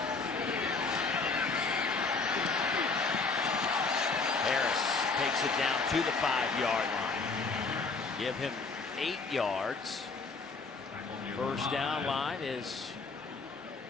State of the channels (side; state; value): right; quieter; 4.2 dB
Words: Harris takes it down to the 5-yard line. Give him 8 yards. 1st down line is